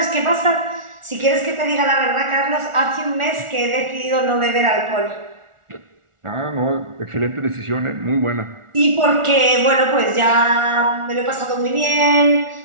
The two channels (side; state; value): left; late; 1.4 ms